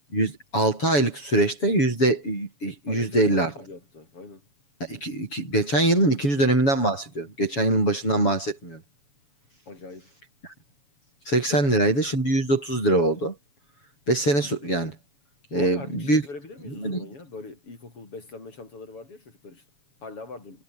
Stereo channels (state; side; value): late; right; 7.1 ms